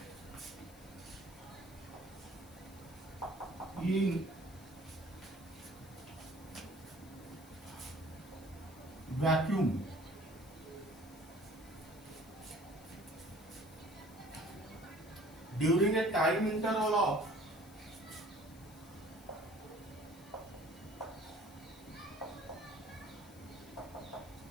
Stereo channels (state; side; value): noise; left; hiss, 22 dB below the sound